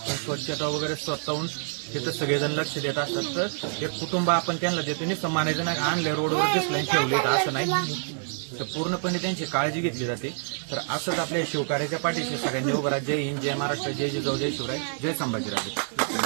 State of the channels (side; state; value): left; silent; digital silence